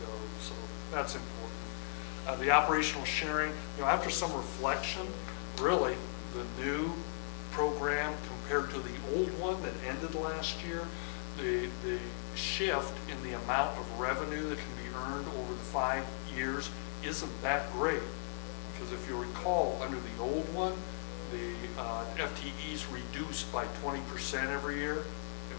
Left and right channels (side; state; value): right; silent; 53 dB below the other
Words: So that's important. The operational sharing, after some reflection, really the new program compared to the old one that ended last year, the shift in the amount of revenue that can be earned over the 5 years isn't that great. Because if you recall, under the old one, the FTEs reduced by 20% every year. It